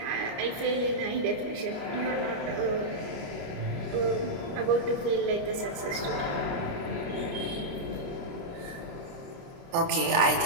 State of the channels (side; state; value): left; late; 29 ms